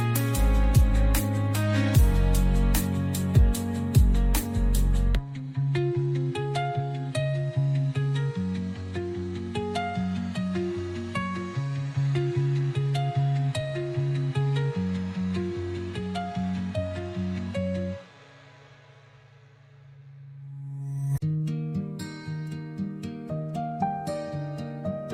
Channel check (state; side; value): identical; both; correlation 1.00